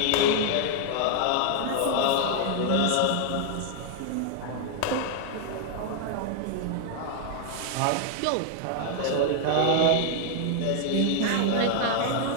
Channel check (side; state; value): both; different; correlation 0.00